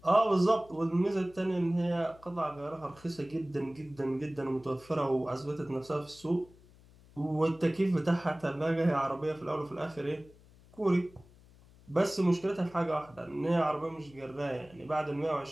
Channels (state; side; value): noise; left; hum, 25 dB below the sound